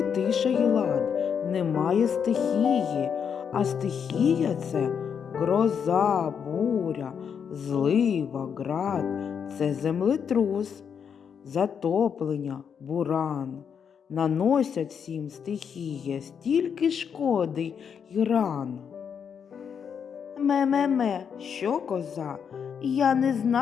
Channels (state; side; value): quieter; right; 7.2 dB